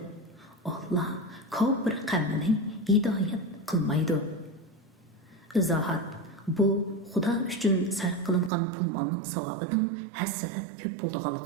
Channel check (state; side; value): drops out; left; at 8.5 s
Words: Alloh kofir qavmini hidoyat qilmaydi. Izohat: bu Xudo uchun sarf qilingan pul molning savobining hassalab ko'p